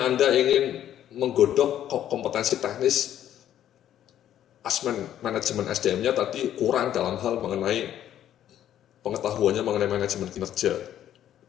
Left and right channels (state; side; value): quieter; right; 11.2 dB